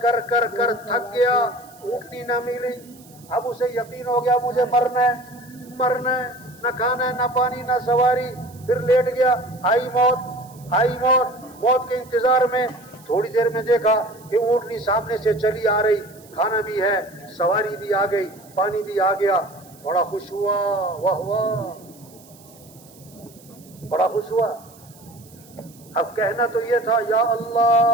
کر کر کر تھک گیا، اونٹنی نہ ملی. اب اسے یقین ہو گیا مجھے مرنا ہے، مرنا ہے، نہ کھانا ہے، نہ پانی، نہ سواری. پھر لیٹ گیا، آئی موت، آئی موت کے انتظار میں تھوڑی دیر میں دیکھا کہ اونٹنی سامنے سے چلی آ رہی، کھانا بھی ہے، سواری بھی آ گئی، پانی بھی آ گیا، بڑا خوش ہوا، واہ واہ، بڑا خوش ہوا۔ اب کہنا تو یہ تھا یا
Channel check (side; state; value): right; noise; hiss, 25 dB below the sound